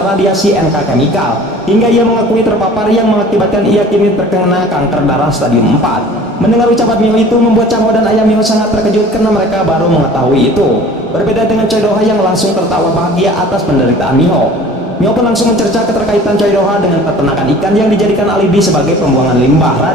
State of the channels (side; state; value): both; normal; correlation 0.46